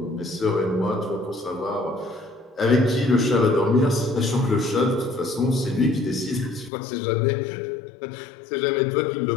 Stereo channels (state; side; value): drops out; right; at 6.7 s